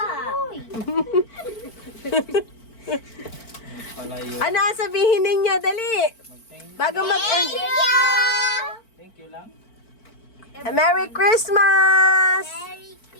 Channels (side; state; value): right; late; 4.5 ms